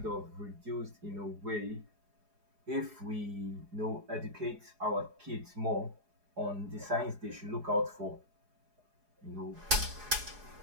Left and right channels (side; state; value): left; late; 4.8 ms